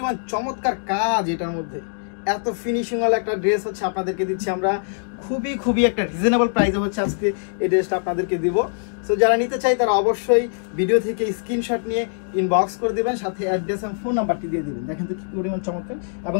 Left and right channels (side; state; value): right; silent; digital silence